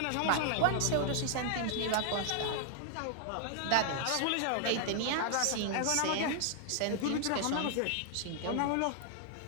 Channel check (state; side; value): different; both; correlation 0.00